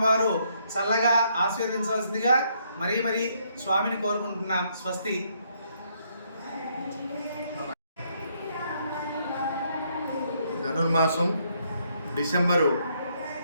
వారు చల్లగా ఆశీర్వదించవలసిందిగా మరీ స్వామిని కోరుకుంటున్నాం. స్వస్తి. ధనుర్మాసం డిసెంబరు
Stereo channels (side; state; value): both; inverted; correlation -0.72